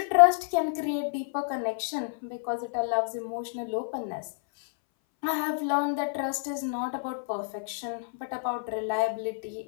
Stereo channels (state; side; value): silent; right; 59 dB below the other